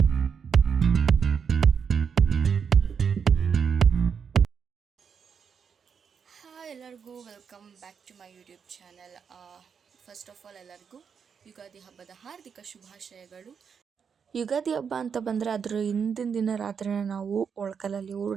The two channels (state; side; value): quieter; left; 6.6 dB